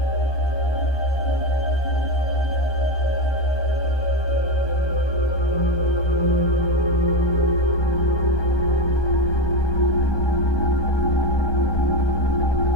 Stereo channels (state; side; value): late; right; 1.2 ms